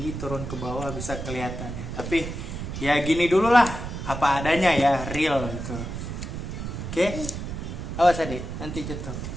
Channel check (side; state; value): right; noise; rumble, 6 dB below the sound